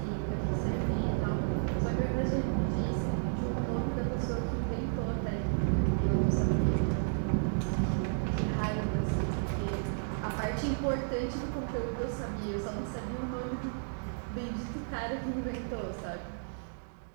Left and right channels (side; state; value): left; silent; digital silence